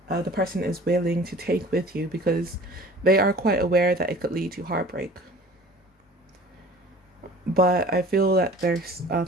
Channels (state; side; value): normal; both; correlation 0.46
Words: the person is willing to take with you, because they are quite aware that it could lead to heartbreak. But I feel that their